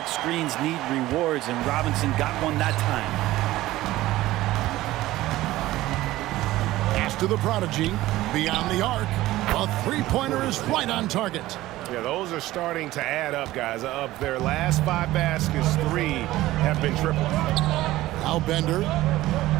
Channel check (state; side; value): quieter; left; 16.5 dB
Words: screens need rewards, and Robinson got one that time. Pass to the prodigy. Beyond the arc. A 3-pointer is right on target. Yeah, those are starting to add up, guys. Of their last 5 baskets, 3 have been triples. Now Bender.